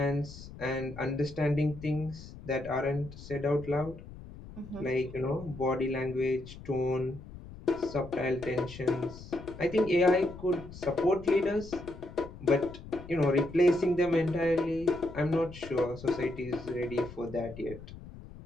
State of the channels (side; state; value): left; noise; rumble, 15 dB below the sound